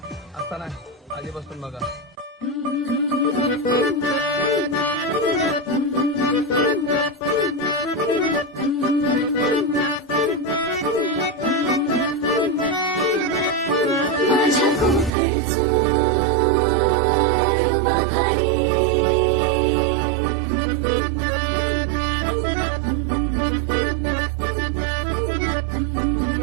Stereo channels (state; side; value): drops out; left; at 15.1 s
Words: आता नाही आधीपासून बघा. माझ्या कोकणचो बाभारी